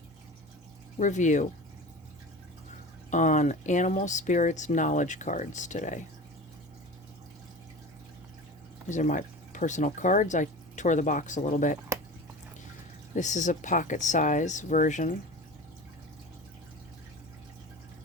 review on Animal Spirits Knowledge cards today. These are my personal cards. I tore the box a little bit. This is a pocket size version.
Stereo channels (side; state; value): both; normal; correlation 0.34